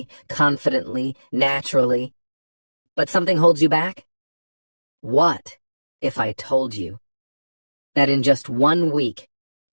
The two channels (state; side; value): inverted; both; correlation -1.00